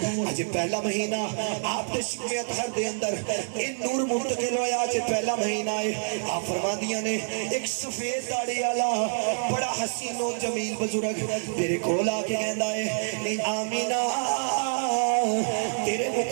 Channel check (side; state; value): left; silent; digital silence